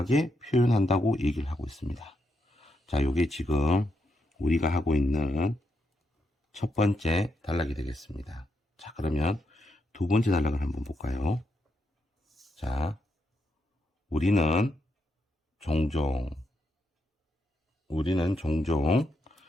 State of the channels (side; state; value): both; normal; correlation 0.81